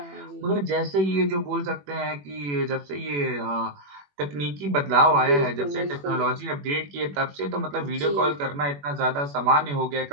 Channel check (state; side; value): late; left; 21 ms